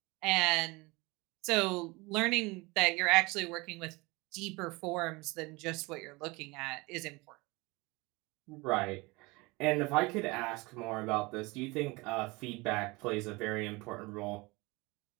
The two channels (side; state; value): left; quieter; 24.4 dB